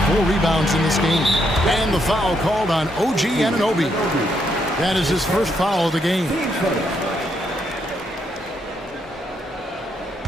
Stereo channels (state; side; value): normal; both; correlation 0.76